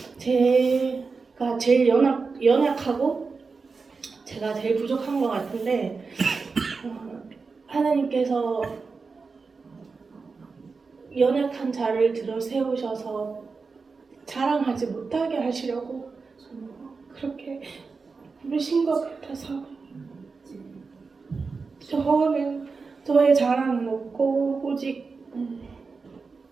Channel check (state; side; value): quieter; left; 4.6 dB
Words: 제가 제일 연약하고 제가 제일 부족한 것 같은데 하나님께서 연약한 자를 들어 세우셔서 자랑하지 못하게 하시려고 그렇게 부르신 것 같아서 저의 자랑은 없고 오직